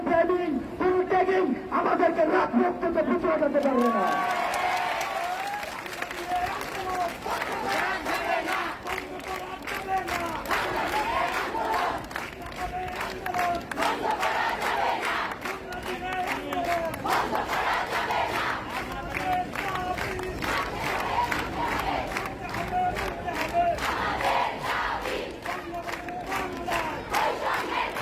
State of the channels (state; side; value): identical; both; correlation 1.00